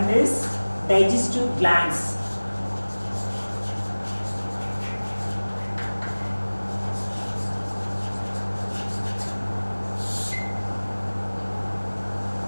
is digestive glands.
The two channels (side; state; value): both; inverted; correlation -1.00